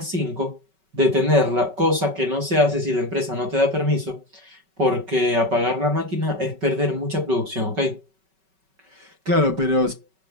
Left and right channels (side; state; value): left; late; 5.3 ms